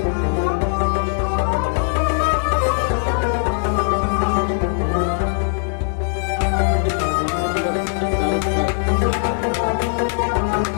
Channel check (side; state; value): right; silent; 66 dB below the other